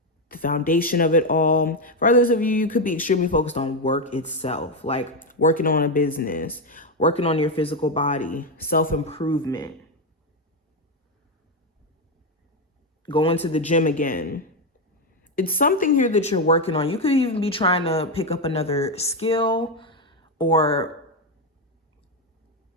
the foundation of it all. For others of you, you could be extremely focused on work itself, like working on a business, working on your physical body, self-improvement, going to the gym again. It's something here that you're working on. You could even be trying to pick up another skill or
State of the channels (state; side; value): normal; both; correlation 0.07